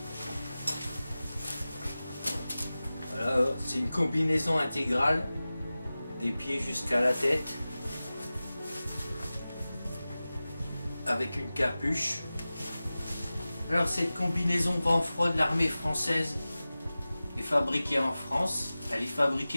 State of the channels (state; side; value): inverted; both; correlation -0.96